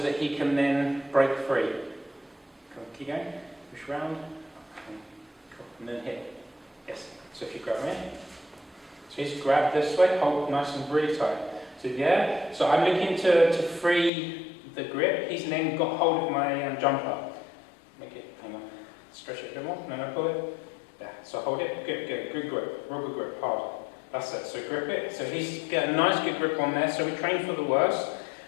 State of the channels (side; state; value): right; drops out; at 14.1 s